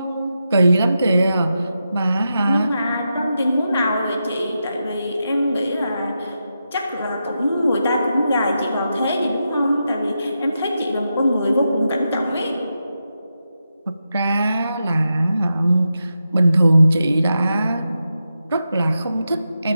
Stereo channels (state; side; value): inverted; both; correlation -0.88